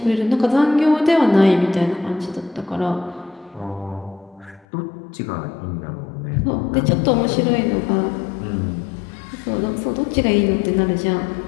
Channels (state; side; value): drops out; right; at 4.7 s